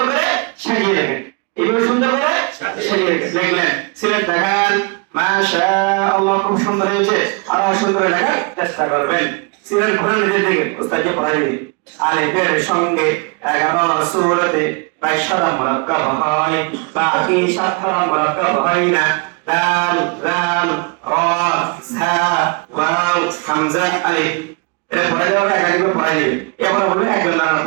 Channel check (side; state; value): left; quieter; 32.1 dB